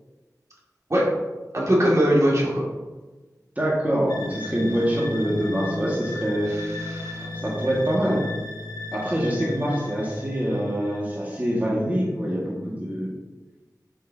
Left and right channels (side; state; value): both; normal; correlation 0.91